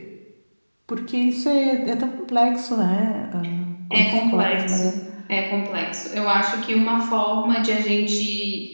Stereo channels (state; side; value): inverted; both; correlation -1.00